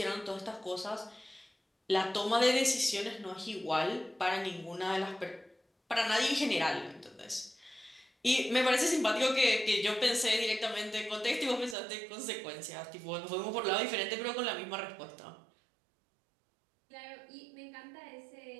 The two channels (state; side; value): drops out; left; at 11.8 s